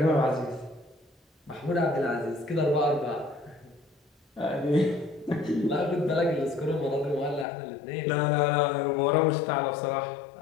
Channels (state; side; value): drops out; right; at 7.5 s